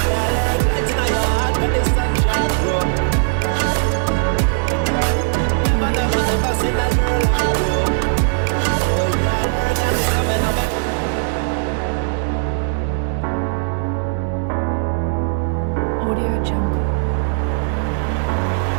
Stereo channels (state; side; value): silent; left; 67 dB below the other